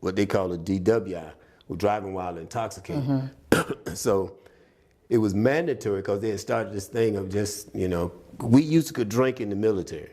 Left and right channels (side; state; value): both; identical; correlation 1.00